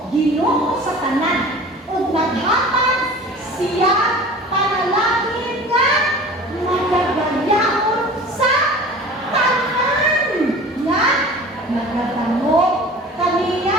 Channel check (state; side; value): normal; both; correlation 0.41